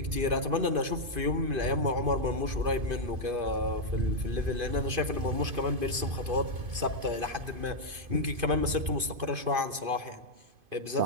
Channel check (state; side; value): late; left; 2.5 ms